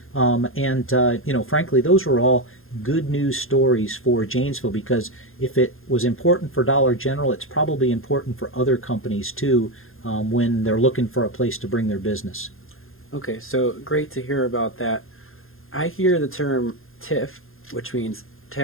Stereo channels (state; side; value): late; right; 0.60 ms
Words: Frankly, those were all good news stories for Janesville, because if it was important for Dollar General, it's probably important for other companies too, when they're looking for a place to bring their business. Okay, so great to hear about that. I hear the term TIF, which means